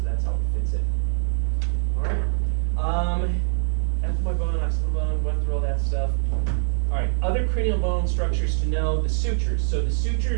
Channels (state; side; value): silent; left; 60 dB below the other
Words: that's how it fits in. All right. Ethmoid bone, occipital bone, went through all that stuff. All right, other cranial bone structures to know, the sutures. So the